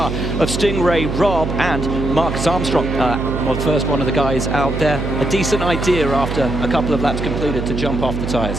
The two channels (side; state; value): right; noise; hum, 4 dB below the sound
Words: of Stingray, Rob, and Marcus Armstrong. Well, first one of the guys out there. A decent idea after a couple of laps completed to jump off the